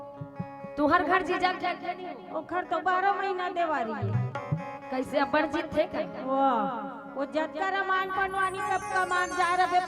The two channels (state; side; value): identical; both; correlation 1.00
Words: तुहर घर जीजा खेलते नहीं हो ओखर तो 12 महीना देवारी है कैसे अपन जीत थे कर वाह वो जतका रमान पनवानी कब कमान जा रहे